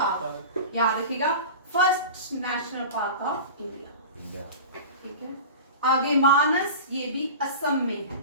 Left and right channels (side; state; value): both; inverted; correlation -0.33